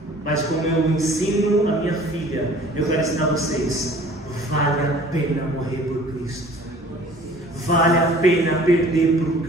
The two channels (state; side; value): normal; both; correlation 0.50